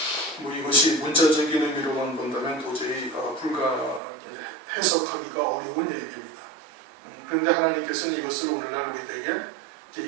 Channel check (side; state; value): left; drops out; at 4.0 s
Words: 뭐 이것이 문자적인 의미로만 본다면 도저히 해석하기가 어려운 얘기입니다. 그런데 하나님께서는 이것을 오늘날